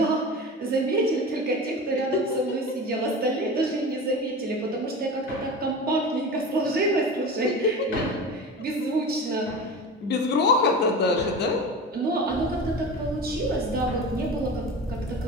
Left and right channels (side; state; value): both; normal; correlation 0.31